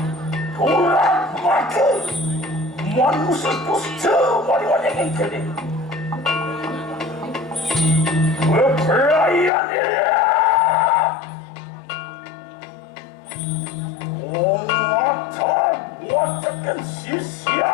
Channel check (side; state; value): right; drops out; at 9.5 s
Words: Tulang maka manusia dusta wanita yang kini Berperayaan dia Watakan